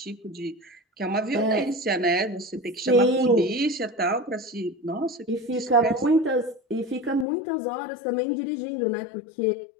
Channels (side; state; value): right; drops out; at 7.2 s